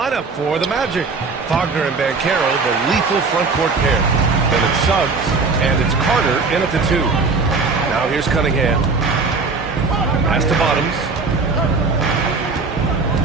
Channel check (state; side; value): quieter; left; 4.2 dB